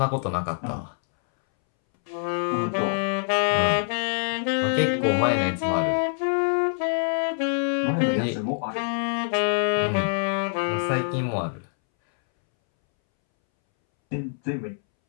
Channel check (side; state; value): right; silent; 62 dB below the other